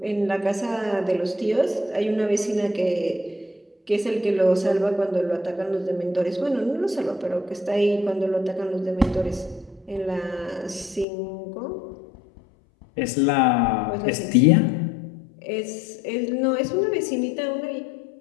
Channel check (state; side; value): drops out; right; at 11.1 s